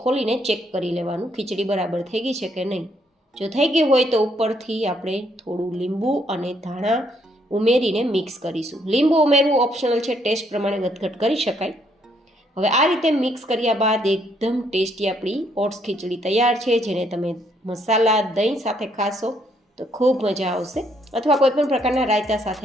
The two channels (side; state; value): both; normal; correlation 0.71